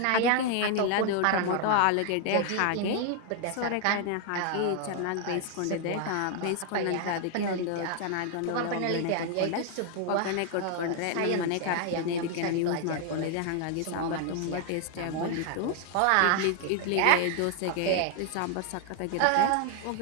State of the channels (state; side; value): different; both; correlation 0.00